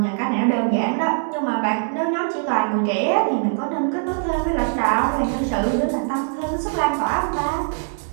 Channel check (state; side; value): silent; left; 64 dB below the other